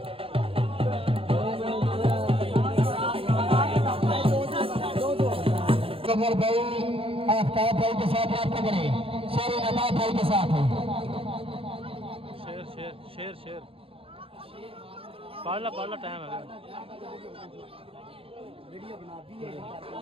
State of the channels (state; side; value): late; left; 0.27 ms